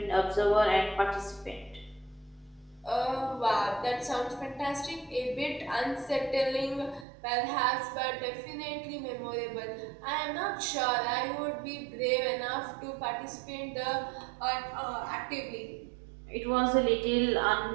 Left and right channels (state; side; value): drops out; left; at 7.1 s